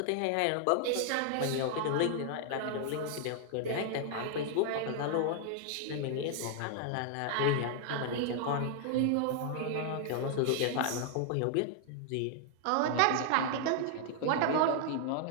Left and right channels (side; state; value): both; different; correlation 0.00